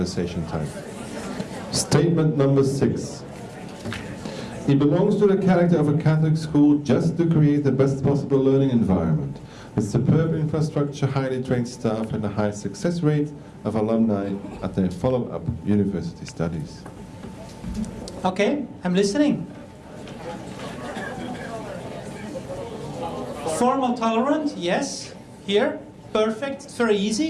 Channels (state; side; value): identical; both; correlation 1.00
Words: time. Statement number 6. It belongs to the character of a Catholic school just to create the best possible learning environment, with superb infrastructure, highly trained staff, and a high success rate of alumni at their follow-up university studies. Okay, I'm listening. Formal tolerant, yes. Here, perfect, it's very